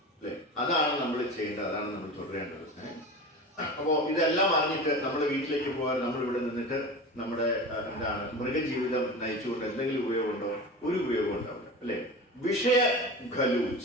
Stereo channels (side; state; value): both; normal; correlation 0.31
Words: അല്ലെ? അതാണ് നമ്മൾ ചെയ്യേണ്ടത്, അതാണ് നമ്മൾ തുടരേണ്ടത്. അപ്പോൾ ഇതെല്ലാം അറിഞ്ഞിട്ട് നമ്മുടെ വീട്ടിലേക്ക് പോകാൻ നമ്മൾ ഇവിടെ നിന്നിട്ട് നമ്മുടെ എന്താണ് മൃഗജീവിതം നയിച്ചുകൊണ്ട് എന്തെങ്കിലും ഉപയോഗമുണ്ടോ? ഒരു ഉപയോഗം ഉണ്ടാവില്ല അല്ലെ? വിഷയ ഖലു